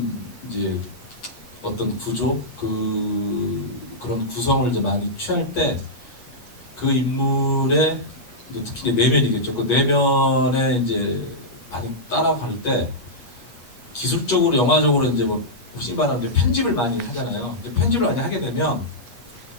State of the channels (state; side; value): late; right; 8.4 ms